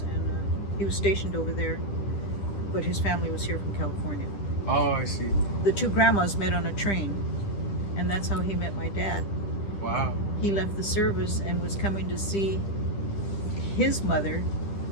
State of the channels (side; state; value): right; late; 10 ms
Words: and he was stationed over there, but his family was here from California. Oh, I see. The 2 grandmas met on a train, and that's how he met my dad. Wow. He left the service and was coming to see his mother,